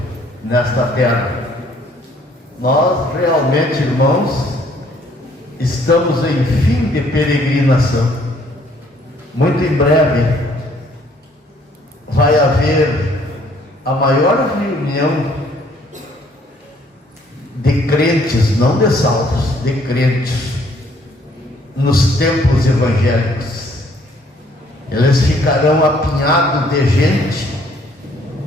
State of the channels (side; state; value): both; normal; correlation 0.63